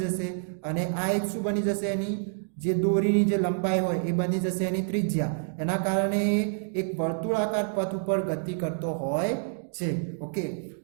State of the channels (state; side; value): silent; left; digital silence